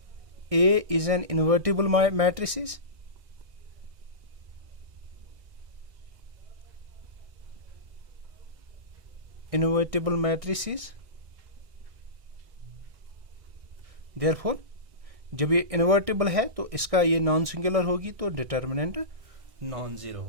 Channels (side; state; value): left; late; 1.6 ms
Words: A is an invertible matrices, therefore जब ये इन्वर्टिबल है तो इसका ये नॉन सिंगुलर होगी तो डिटर्मिनेंट नॉन जीरो